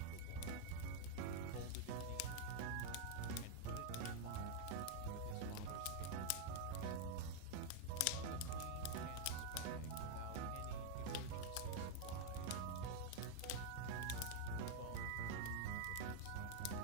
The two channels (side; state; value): both; different; correlation 0.00